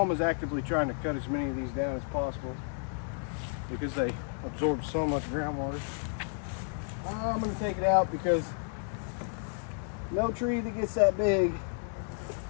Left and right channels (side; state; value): right; silent; 57 dB below the other